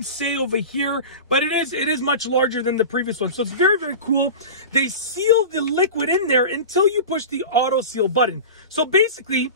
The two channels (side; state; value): both; inverted; correlation -0.31